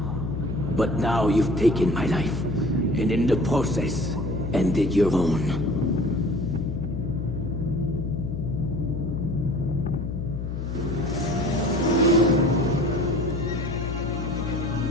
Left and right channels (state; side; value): noise; left; hum, 4 dB below the sound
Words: But now you've taken my life, and in the process, ended your own.